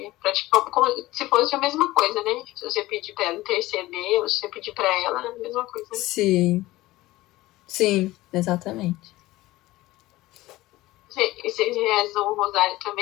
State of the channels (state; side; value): quieter; right; 17.9 dB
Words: praticar como se fosse a mesma coisa, né? Se você pedir para ela interceder, ou se você pedir para ela, é a mesma coisa. Né? Sim. Sim, exatamente. Vocês rezam o rosário